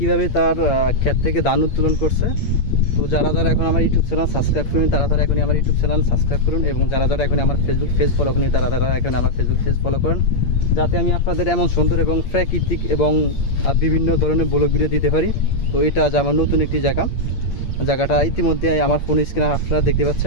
তার ক্ষেত থেকে ধান উত্তোলন করছে। তো যারা এখন আমার ইউটিউব চ্যানেল সাবস্ক্রাইব করুন, তারা এখনই আমার ইউটিউব চ্যানেল সাবস্ক্রাইব করুন, এবং যারা এখন আমার ফেসবুক পেজ ফলো করুন, তারা এখন আমার ফেসবুক পেজ ফলো করুন, যাতে আমি আপনাদের এমন সুন্দর এবং প্রাকৃতিক এবং বিভিন্ন ধরনের ব্লগ ভিডিও দিতে পারি। তো এটা আজ আমার নতুন একটি জায়গাটা ইতিমধ্যে আমার ফোন স্ক্রিনে আপনারা দেখতে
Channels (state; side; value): late; right; 8.7 ms